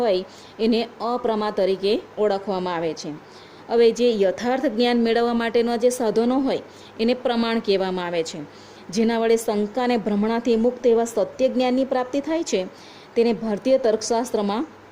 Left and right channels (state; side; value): identical; both; correlation 1.00